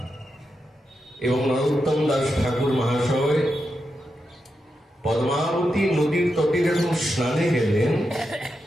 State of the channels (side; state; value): both; normal; correlation 0.86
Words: এবং নরোত্তম দাস ঠাকুর মহাশয় পদ্মাবতী নদীর তটে যখন স্নানে গেলেন,